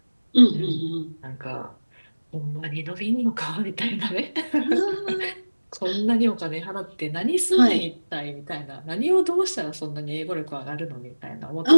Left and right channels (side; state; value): both; inverted; correlation -1.00